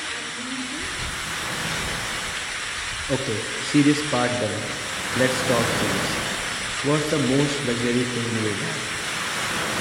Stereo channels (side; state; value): both; identical; correlation 1.00